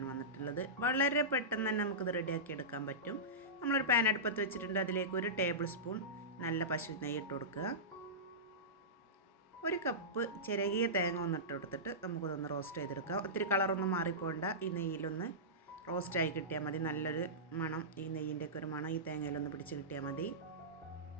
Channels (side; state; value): both; normal; correlation -0.17